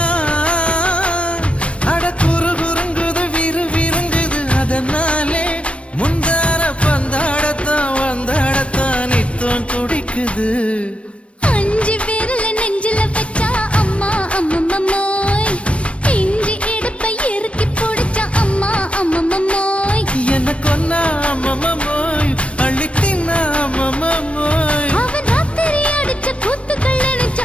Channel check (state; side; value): late; right; 0.061 ms